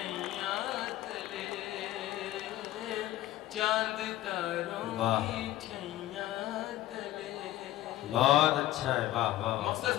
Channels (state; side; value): quieter; right; 15.2 dB